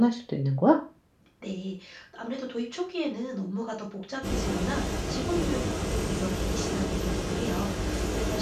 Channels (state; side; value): identical; both; correlation 1.00